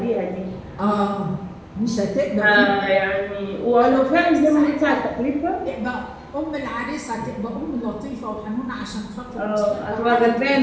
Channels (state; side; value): identical; both; correlation 1.00